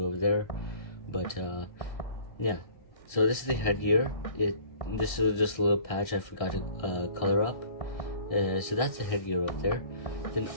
over there. But yeah, so this is the headgear. This is just a little patch I forgot to color up. So that's the headgear up there. Then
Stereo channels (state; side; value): late; right; 1.6 ms